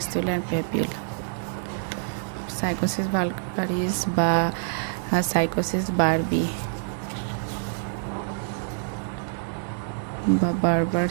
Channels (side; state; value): left; silent; digital silence